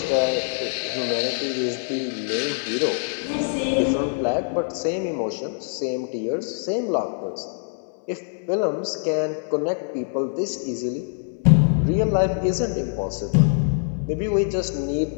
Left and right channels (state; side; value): silent; right; 63 dB below the other